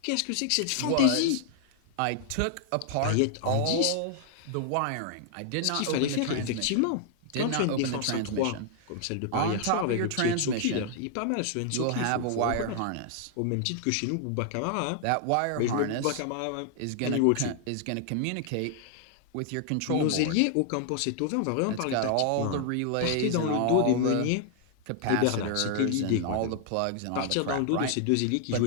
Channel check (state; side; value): different; both; correlation 0.00